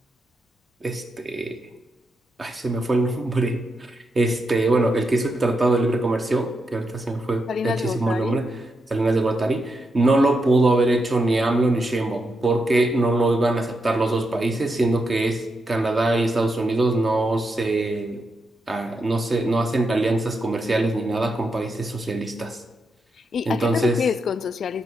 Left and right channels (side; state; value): both; normal; correlation 0.84